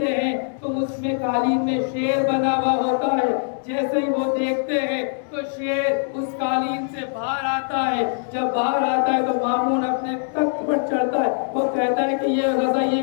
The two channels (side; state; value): right; silent; digital silence